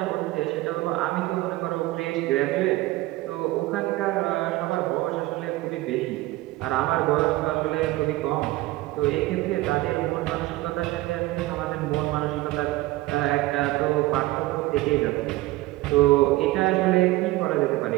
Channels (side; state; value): left; quieter; 18.2 dB